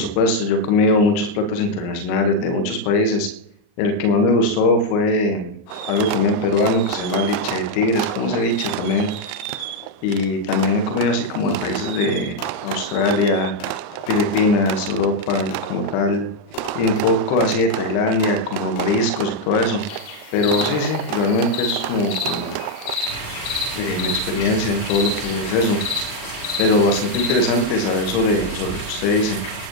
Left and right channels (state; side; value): late; right; 38 ms